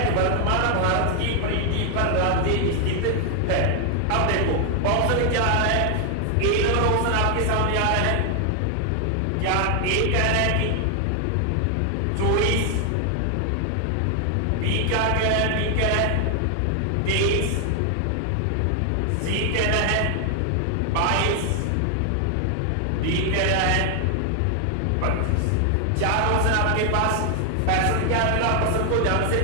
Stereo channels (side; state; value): both; different; correlation 0.00